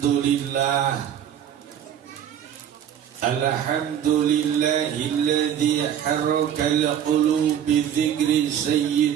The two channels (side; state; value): left; quieter; 9.6 dB